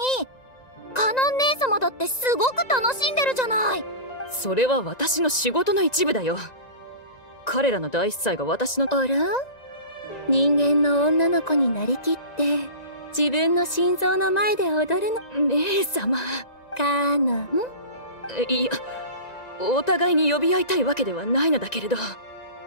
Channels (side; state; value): right; late; 1.9 ms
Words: カノン姉様だってすごく楽しんでるじゃない。それは私の仕事の一部だよ。彼らの大司祭が私の。あら、人間の女の子になりきって自分の心臓の前で踊るの。姉様。カノン。いや、お互いに呼び合いたいわけではないのだけれど。